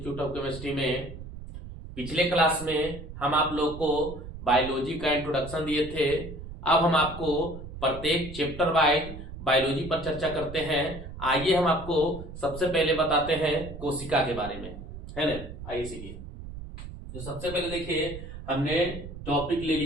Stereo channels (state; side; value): noise; right; rumble, 11 dB below the sound